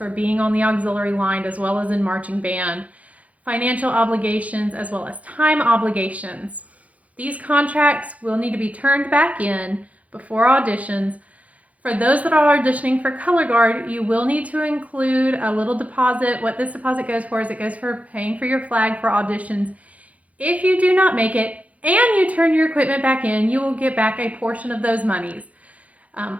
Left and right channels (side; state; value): left; late; 0.068 ms